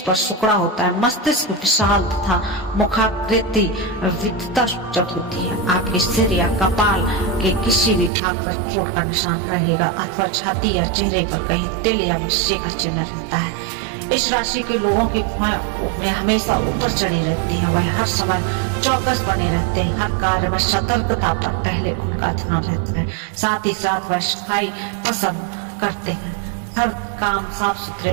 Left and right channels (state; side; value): drops out; left; at 8.1 s